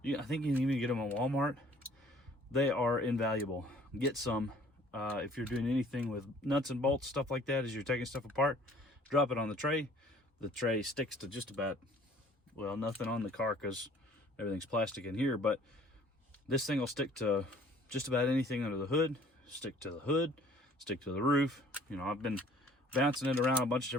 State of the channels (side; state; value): both; normal; correlation 0.55